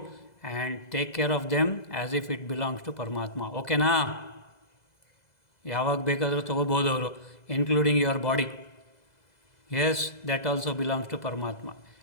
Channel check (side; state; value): right; late; 2.0 ms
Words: and take care of them as if it belongs to ಪರಮಾತ್ಮ. ಓಕೆನಾ? ಯಾವಾಗ ಬೇಕಾದರೂ ತೊಗೋಬೋದು ಅವರು, including your body. Yes, that also belongs to Paramatma.